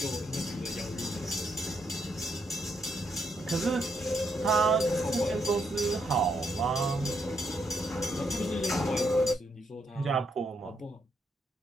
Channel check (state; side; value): normal; both; correlation 0.77